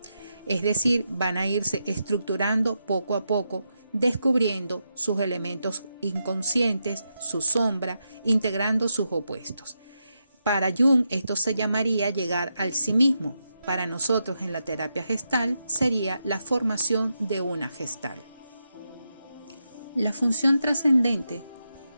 Es decir, van a irse estructurando poco a poco, descubriendo sus elementos inconscientes, su sombra, integrando sus opuestos. Para Jung esto se llamaría llegar al sí mismo. para nosotros en la terapia gestal sería la formación de una gestal. La función trascendente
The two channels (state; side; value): inverted; both; correlation -0.85